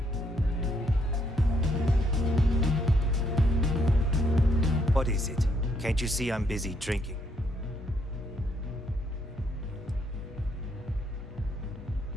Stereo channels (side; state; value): both; normal; correlation 0.72